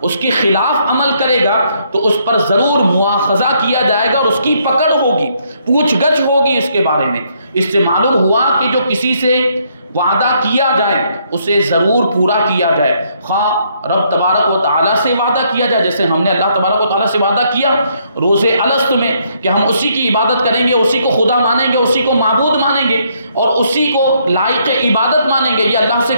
اس کے خلاف عمل کرے گا، تو اس پر ضرور مواخذہ کیا جائے گا اور اس کی پکڑ ہوگی، پوچھ گچھ ہوگی اس کے بارے میں۔ اس سے معلوم ہوا کہ جو کسی سے وعدہ کیا جائے اسے ضرور پورا کیا جائے، خواہ رب تبارک و تعالیٰ سے وعدہ کیا جائے، جیسے ہم نے اللہ تبارک و تعالیٰ سے وعدہ کیا روز الست میں کہ ہم اسی کی عبادت کریں گے، اسی کو خدا مانیں گے، اسی کو معبود مانیں گے اور اسی کو لائق عبادت مانیں گے، یہ اللہ سے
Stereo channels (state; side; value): inverted; both; correlation -0.71